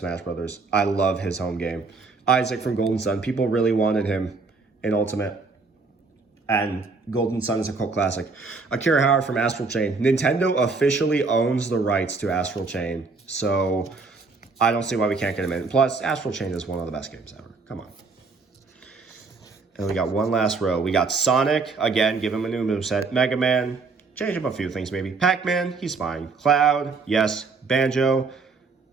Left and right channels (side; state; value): left; quieter; 4.2 dB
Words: Brothers. I love his home game. Isaac from Golden Sun. People really wanted him in Ultimate. And Golden Sun is a cult classic. Akira Howard from Astral Chain. Nintendo officially owns the rights to Astral Chain. So I don't see why we can't get him in. Plus, Astral Chain is one of the best games ever. Come on. And we got one last row. We got Sonic. Again, give him a new moveset. Mega Man. Change up a few things maybe. Pac-Man. He's fine. Cloud. Yes. Banjo.